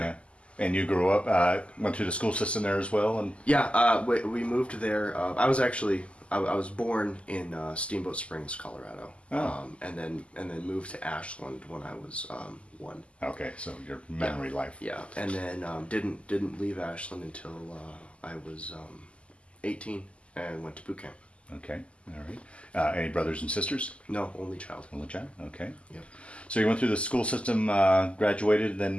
And you grew up, went through the school system there as well, and Yeah, we moved there. I was born in Steamboat Springs, Colorado, and then moved to Ashland when I was 1. okay, so your memory life. Yeah, and then didn't leave Ashland until I was 18 and went to boot camp. Okay, all right. Any brothers and sisters? No, only child. Only child. Okay. Yeah. So you went through the school system, graduated,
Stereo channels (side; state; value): right; late; 0.057 ms